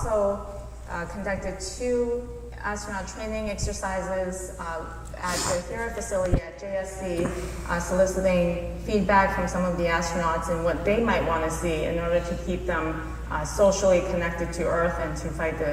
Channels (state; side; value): identical; both; correlation 1.00